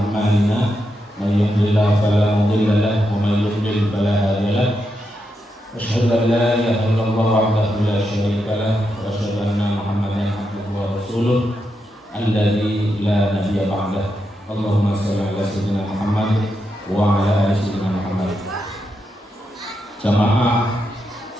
may yahdihillahu fala mudilla lahu wa may yudlil fala hadiya lahu. Asyhadu an la ilaha illallah wahdahu la syarika lahu wa asyhadu anna Muhammadan abduhu wa rasuluh alladzi la nabiyya ba'dah. Allahumma shalli ala sayyidina Muhammad wa ala ali sayyidina Muhammad. Jamaah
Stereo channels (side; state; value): both; normal; correlation 0.84